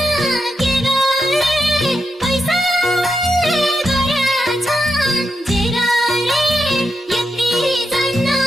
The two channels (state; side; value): normal; both; correlation 0.86